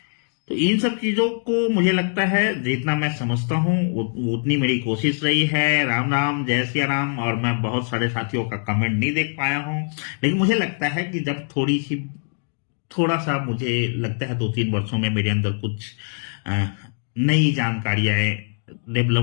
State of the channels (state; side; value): silent; right; 60 dB below the other